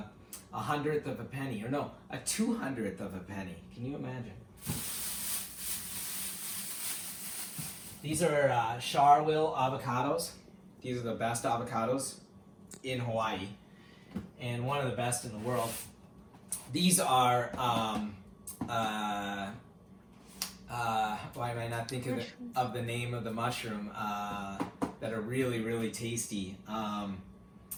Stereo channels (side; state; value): both; identical; correlation 1.00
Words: of a penny, or no, 200th of a penny. Can you imagine? These are Charville avocados. These are the best avocados in Hawaii, and one of the best in the world. These are why am I not thinking of the name of the mushroom that are really, really tasty. Can't